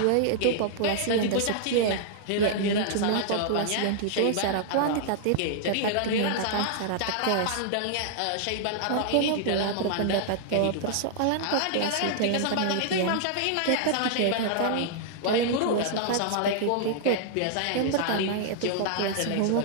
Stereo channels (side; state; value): both; different; correlation -0.01